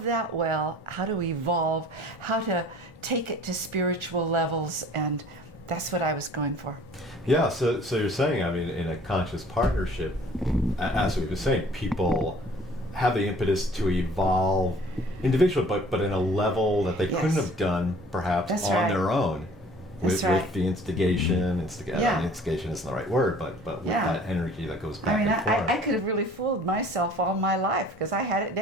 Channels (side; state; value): both; normal; correlation 0.51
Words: that well, how to evolve, how to take it to spiritual levels, and that's what I was going for. Yeah, so you're saying, in a conscious partnership, as we were saying, people have the impetus to evolve individually, but in a level that they couldn't have done perhaps That's on right. their own. With the instigation, instigation isn't the right word, but with that energy that goes back and forth. I could have really fooled myself all my life because I had it